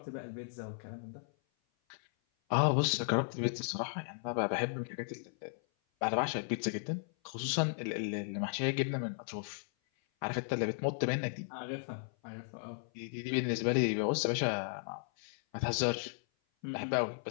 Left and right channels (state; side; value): silent; right; 54 dB below the other